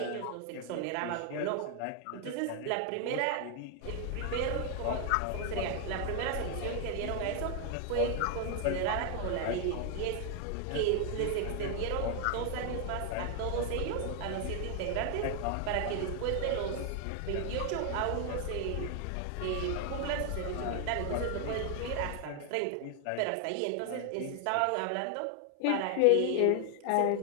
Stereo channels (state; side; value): different; both; correlation 0.00